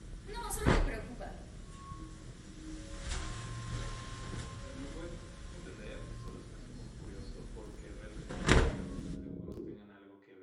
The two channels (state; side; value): identical; both; correlation 1.00